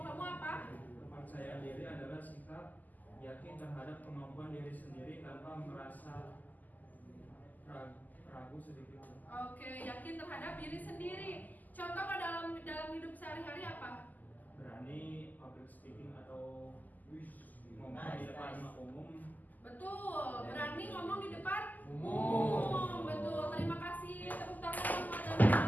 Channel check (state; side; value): late; right; 0.082 ms